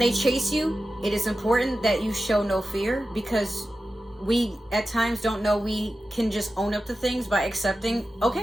chase you, it is important that you show no fear, because we at times don't know we can just own up to things by accepting,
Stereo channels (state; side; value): normal; both; correlation 0.93